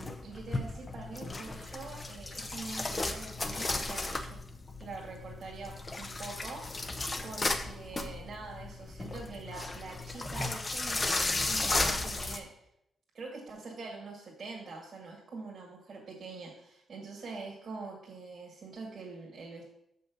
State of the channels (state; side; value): normal; both; correlation 0.89